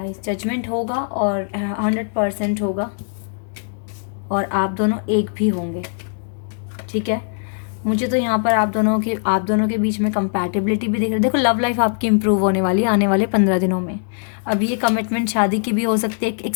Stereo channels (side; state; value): right; silent; 65 dB below the other